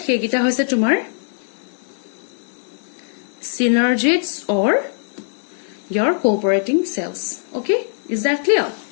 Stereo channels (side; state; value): right; silent; 65 dB below the other